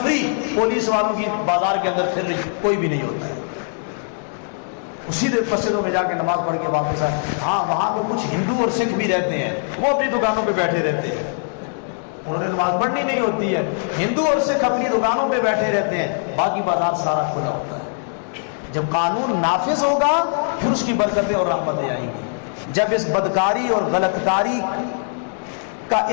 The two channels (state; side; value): silent; right; digital silence